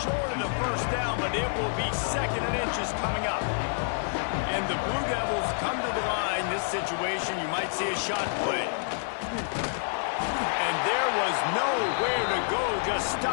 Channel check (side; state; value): right; silent; 59 dB below the other